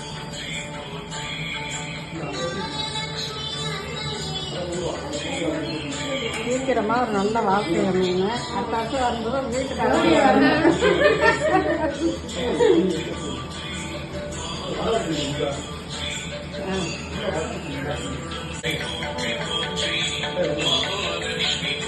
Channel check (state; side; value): identical; both; correlation 1.00